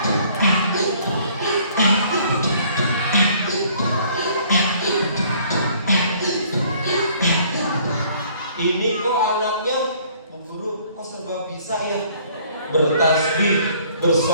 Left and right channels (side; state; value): both; inverted; correlation -0.58